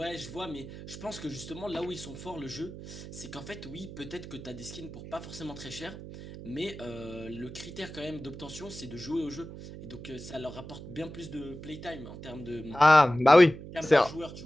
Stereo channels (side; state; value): right; noise; hum, 12 dB below the sound